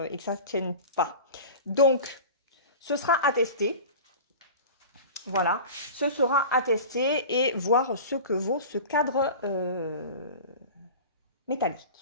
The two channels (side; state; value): both; inverted; correlation -0.35